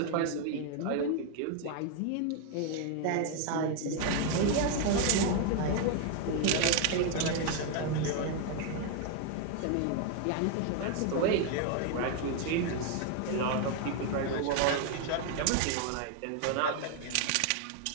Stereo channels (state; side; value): different; both; correlation 0.00